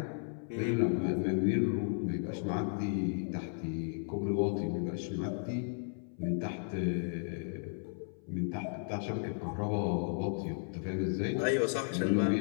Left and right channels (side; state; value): right; silent; 55 dB below the other